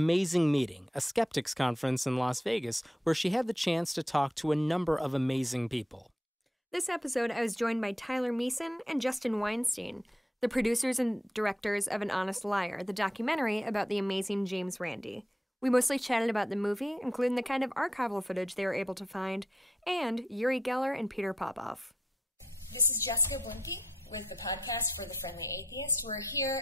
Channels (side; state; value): both; normal; correlation 0.79